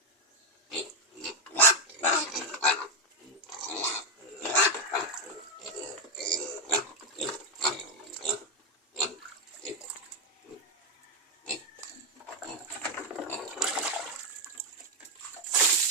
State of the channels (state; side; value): normal; both; correlation 0.05